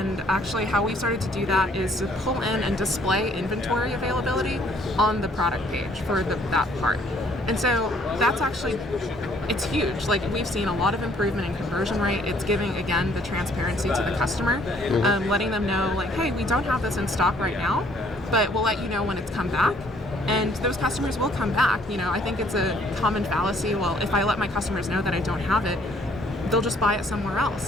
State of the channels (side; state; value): both; normal; correlation 0.62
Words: actually how we started to do that is to pull in and display inventory availability on the product page for that part. And so that's actually, it's huge. Like, we've seen a lot of improvement in conversion rate. It's giving, again, the transparency to the customer, letting them know, like, hey, we don't have this in stock right now, but we'll let you know when it's come back. And those customers will come back. I think it's a common fallacy. Well, if I let my customers know that I don't have it, they'll just buy it somewhere